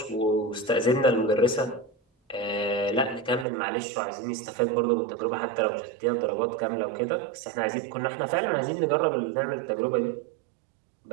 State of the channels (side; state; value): left; drops out; at 3.5 s